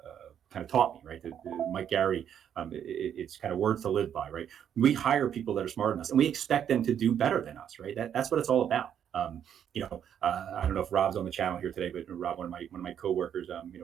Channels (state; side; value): quieter; left; 9.0 dB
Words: of taught me, right? Mike Geraghty, it's kind of words to live by, right? We hire people that are smarter than us, and we expect them to do better than us, right? That's what it's all about. I don't know if Rob's on the channel here today, but Rob, one of my coworkers,